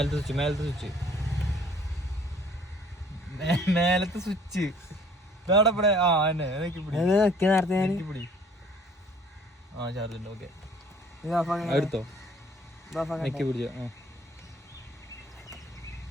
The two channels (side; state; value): both; normal; correlation 0.55